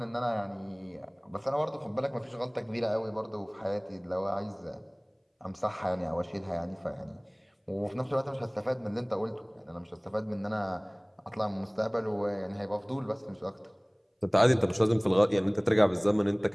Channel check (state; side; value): identical; both; correlation 1.00